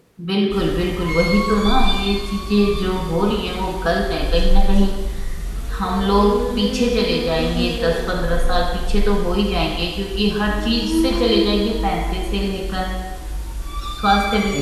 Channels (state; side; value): identical; both; correlation 1.00